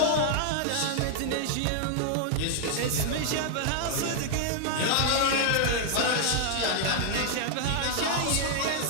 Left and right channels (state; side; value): different; both; correlation -0.01